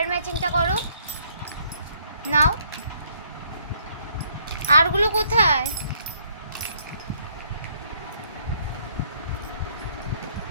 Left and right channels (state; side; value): inverted; both; correlation -0.66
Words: ম্যাচিংটা করো। নাও। আরগুলো কোথায়?